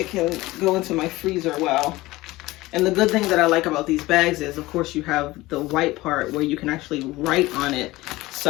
can go into my freezer well. And the good thing that I like about these bags is, of course, you have the white part where you can actually write on it.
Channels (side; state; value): right; quieter; 19.1 dB